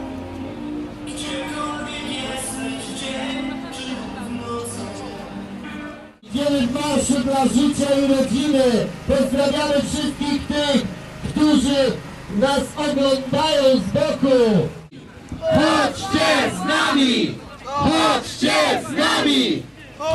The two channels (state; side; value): identical; both; correlation 1.00